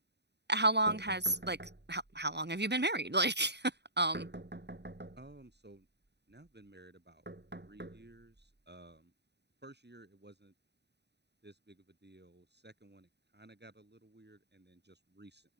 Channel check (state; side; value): late; left; 0.49 ms